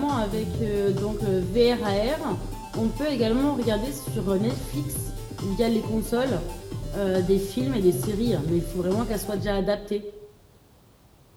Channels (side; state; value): both; identical; correlation 1.00